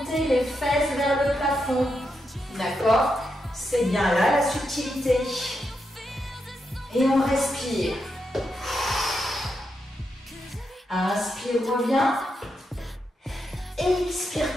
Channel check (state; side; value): normal; both; correlation 0.84